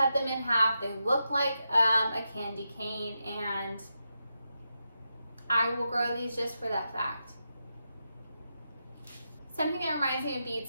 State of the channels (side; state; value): both; inverted; correlation -0.87